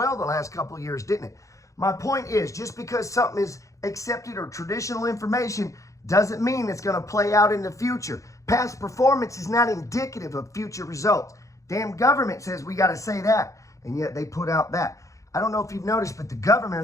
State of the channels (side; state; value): right; late; 0.15 ms